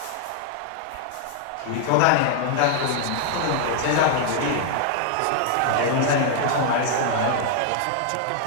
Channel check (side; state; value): both; different; correlation 0.00